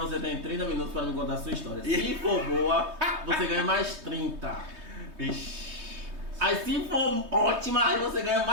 tem 30 minutos para me contar a sua história. Se for boa, você ganha mais 30. Vixe. Aí se for ótima, aí você ganha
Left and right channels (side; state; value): left; late; 3.2 ms